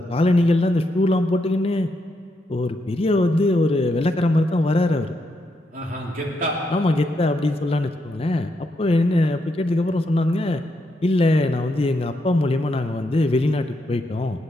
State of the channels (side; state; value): both; normal; correlation 0.80